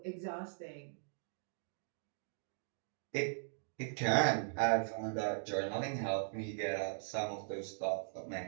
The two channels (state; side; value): silent; left; digital silence